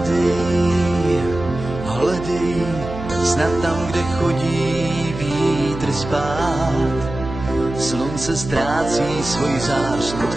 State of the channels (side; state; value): right; noise; hum, 9 dB below the sound